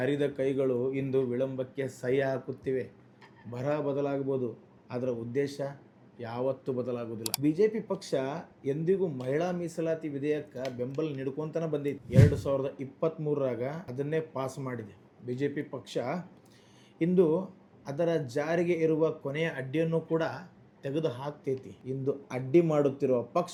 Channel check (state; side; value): identical; both; correlation 1.00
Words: ಕೈಗಳು ಇಂದು ವಿಳಂಬಕ್ಕೆ ಸಹಿ ಹಾಕುತ್ತಿವೆ. ಬರಹ ಬದಲಾಗಬಹುದು, ಅದರ ಉದ್ದೇಶ ಯಾವತ್ತೂ ಬದಲಾಗುವುದಿಲ್ಲ. BJP ಪಕ್ಷ ಎಂದಿಗೂ ಮಹಿಳಾ ಮೀಸಲಾತಿ ವಿಧೇಯಕ ಬೆಂಬಲ ನೀಡ್ಕೊಂತನ ಬಂದಿದೆ. 2023ರಾಗ ಅದನ್ನೇ ಪಾಸ್ ಮಾಡಿದೆ. BJP ಪಕ್ಷ ಇಂದು ಅದರ ಜಾರಿಗೆ ಇರುವ ಕೊನೆಯ ಅಡ್ಡಿಯನ್ನು ಕೂಡ ತೆಗೆದು ಹಾಕ್ತೈತಿ. ಇಂದು ಅಡ್ಡಿ ಮಾಡುತ್ತಿರುವ